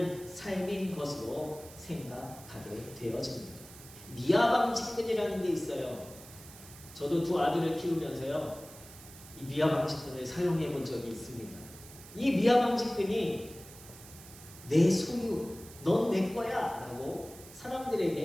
삶인 것으로 생각하게 되어집니다. 미아방직근이라는 게 있어요. 저도 두 아들을 키우면서요, 이 미아방직근을 사용해 본 적이 있습니다. 이 미아방직근이 내 소유, 넌 내 거야 라고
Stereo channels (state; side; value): noise; right; hiss, 18 dB below the sound